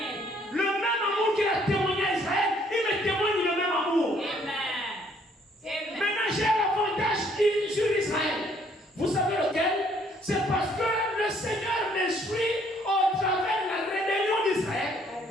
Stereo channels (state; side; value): normal; both; correlation 0.64